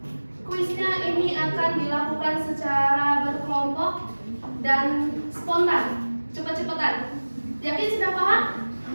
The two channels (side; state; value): both; inverted; correlation -1.00